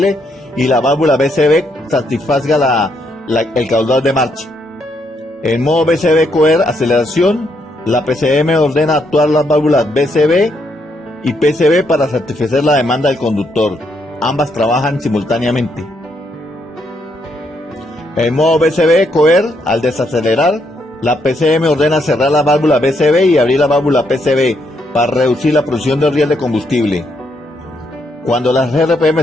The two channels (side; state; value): both; normal; correlation 0.76